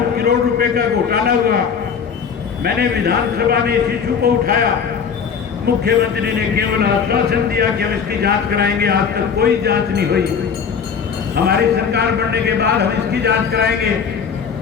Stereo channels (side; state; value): right; quieter; 6.6 dB